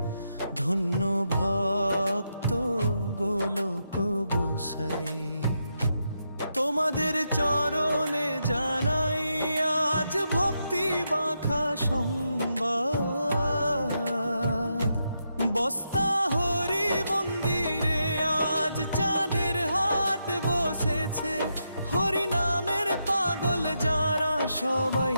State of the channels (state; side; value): inverted; both; correlation -0.83